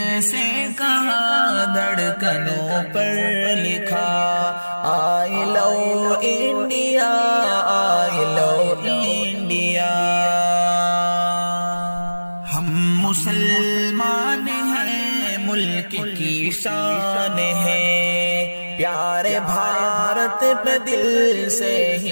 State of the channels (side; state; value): both; inverted; correlation -1.00